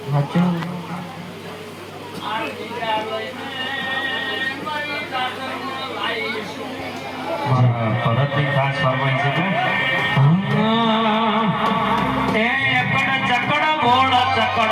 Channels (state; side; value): identical; both; correlation 1.00